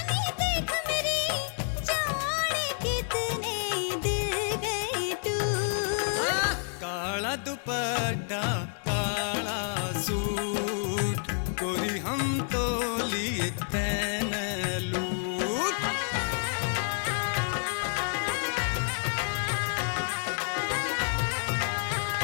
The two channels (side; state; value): right; silent; 58 dB below the other